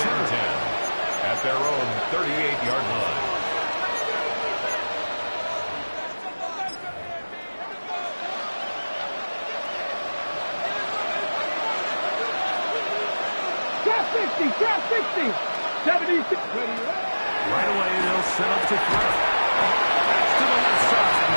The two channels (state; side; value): inverted; both; correlation -1.00